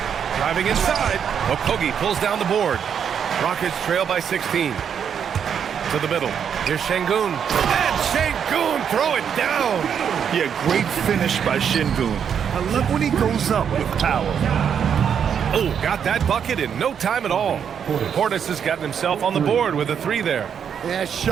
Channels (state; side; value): quieter; left; 7.8 dB